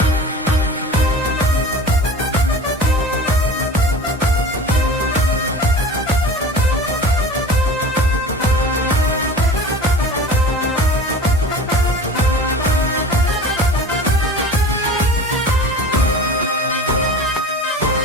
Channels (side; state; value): both; normal; correlation 0.38